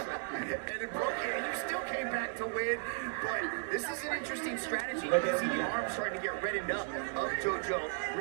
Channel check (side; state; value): left; silent; 54 dB below the other